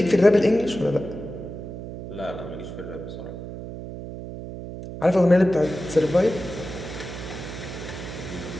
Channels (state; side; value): noise; right; hum, 10 dB below the sound